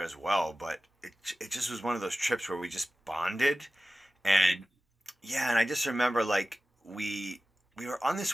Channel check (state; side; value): normal; both; correlation 0.97